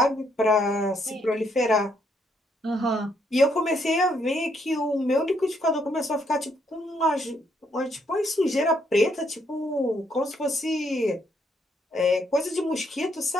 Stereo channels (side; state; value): both; normal; correlation 0.73